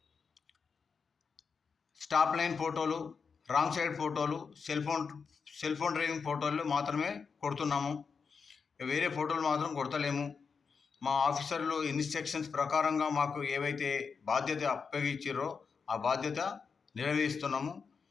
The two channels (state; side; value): quieter; right; 5.5 dB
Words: స్టాప్ లైన్ ఫోటోలు, రాంగ్ సైడ్ ఫోటోలు, సెల్ ఫోన్ డ్రైవింగ్ ఫోటోలు మాత్రమే కొడుతున్నాము. వేరే ఫోటోలు మాత్రం కొడతలేము. మా ఆఫీసర్లు ఇన్స్ట్రక్షన్స్ ప్రకారంగా మాకు ఏవైతే బాధ్యత అప్పగించారో ఆ బాధ్యత నెరవేరుస్తున్నాము.